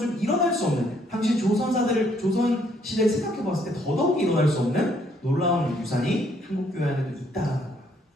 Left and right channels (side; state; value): both; normal; correlation 0.68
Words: 일어날 수 없는, 당시 조선 시대를 생각해 봤을 때 더더욱 일어날 수 없는 놀라운 유산이 한국 교회 안에도 있다라는 거예요.